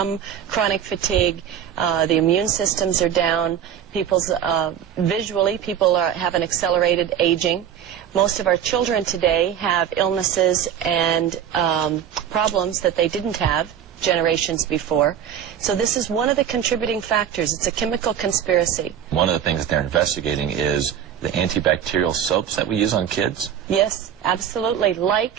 chronic fatigue. The immune systems are down. Visually, people have an accelerated aging. Most of our children today have illnesses and problems that they didn't have generations before. So this is one of the contributing factors. It's a chemical conspiracy. One of the things that they're investigating is the antibacterial soaps that we use on kids? Yes, absolutely.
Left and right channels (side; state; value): left; quieter; 9.2 dB